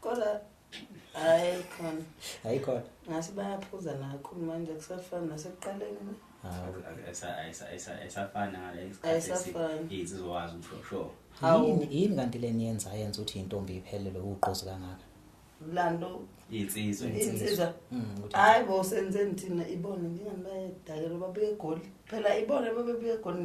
Kodwa ayikhona. Ngasi bayaphuza nakhulu manje kusafana nasekuqaleni. Ayisafana ngale isikhathi izizwazi usho. Yini kanti leni yenza ukuthi intombi iphelele uqozi kangaka? Lando insizwa hayi bo senzeni thina ibone njengabayedakela babuye egoli phela ibone babebuye egoli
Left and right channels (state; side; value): identical; both; correlation 1.00